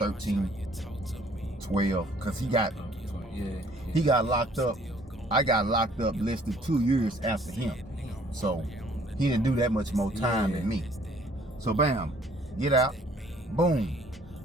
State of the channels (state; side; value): normal; both; correlation 0.59